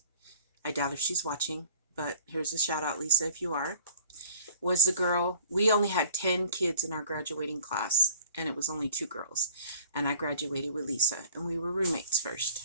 I doubt if she's watching, but here's a shout out, Lisa, if you are, was the girl. We only had 10 kids in our graduating class, and it was only 2 girls. And I graduated with Lisa, and we were roommates first.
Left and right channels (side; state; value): both; inverted; correlation -0.51